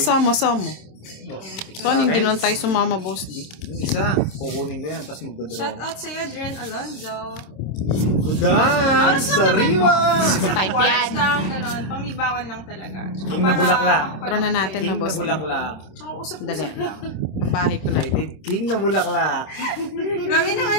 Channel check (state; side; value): late; right; 26 ms